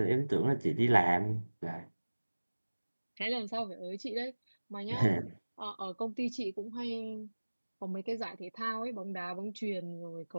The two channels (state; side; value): inverted; both; correlation -1.00